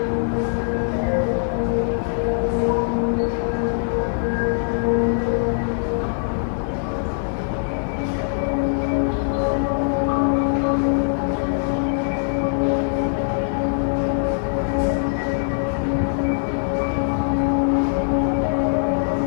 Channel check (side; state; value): right; silent; digital silence